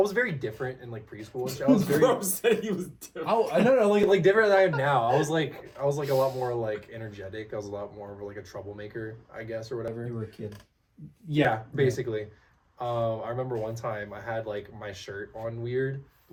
very different in like preschool and shit. I was very Bro said he was different. I don't know like different than I am now. I was like a lot more like energetic. I was a lot more of like a troublemaker, I guess, or whatever. You were a kid. Yeah, basically. I remember one time I had like my shirt on weird,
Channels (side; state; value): both; identical; correlation 1.00